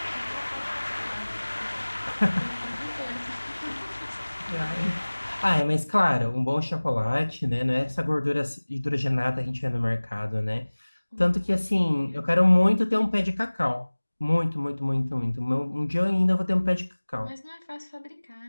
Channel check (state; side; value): inverted; both; correlation -1.00